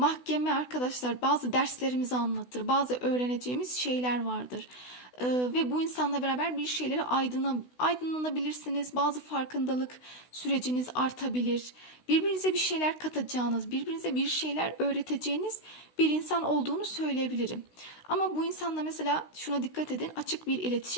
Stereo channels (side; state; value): right; late; 16 ms